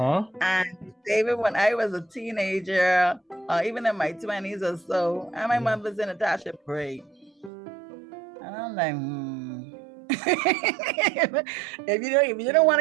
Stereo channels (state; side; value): drops out; left; at 7.5 s